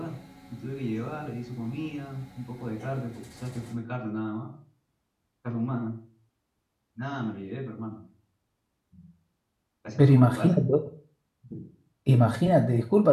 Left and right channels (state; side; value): identical; both; correlation 1.00